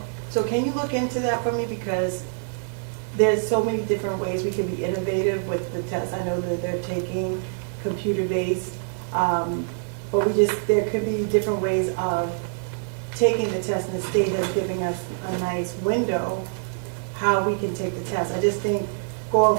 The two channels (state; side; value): silent; left; 62 dB below the other